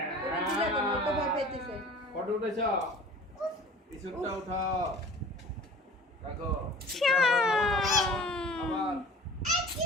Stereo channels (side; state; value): both; normal; correlation 0.44